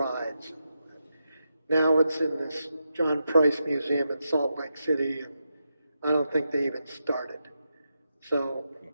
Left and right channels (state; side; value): inverted; both; correlation -0.87